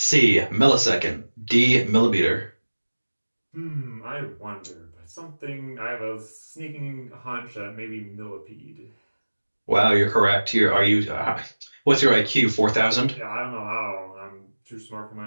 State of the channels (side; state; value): both; inverted; correlation -1.00